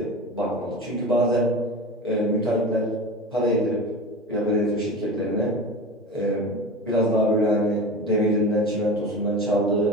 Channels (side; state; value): both; normal; correlation 0.31